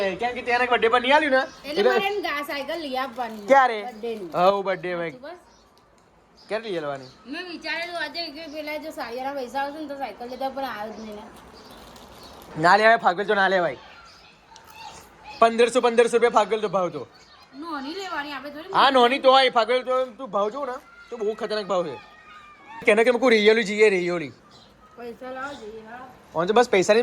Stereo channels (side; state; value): both; identical; correlation 1.00